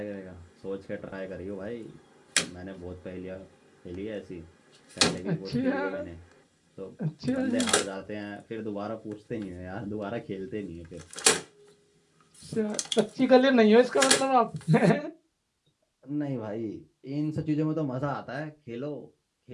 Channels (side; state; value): both; identical; correlation 1.00